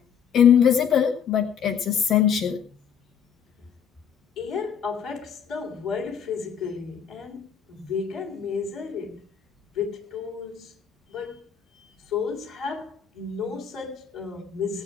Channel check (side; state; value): right; quieter; 7.7 dB